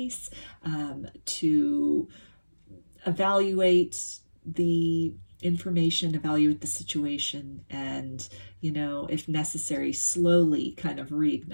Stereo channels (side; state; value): both; inverted; correlation -1.00